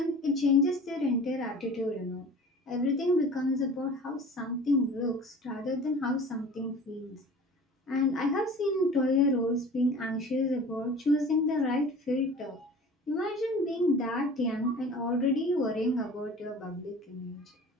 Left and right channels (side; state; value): both; normal; correlation 0.42